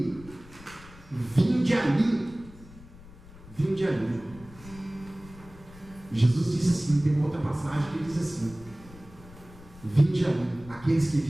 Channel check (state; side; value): noise; left; rumble, 20 dB below the sound